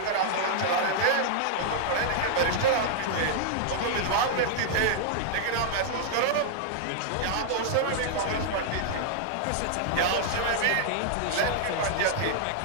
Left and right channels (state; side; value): different; both; correlation -0.01